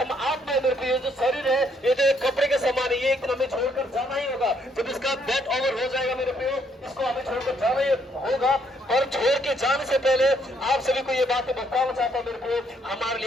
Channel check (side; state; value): both; normal; correlation 0.70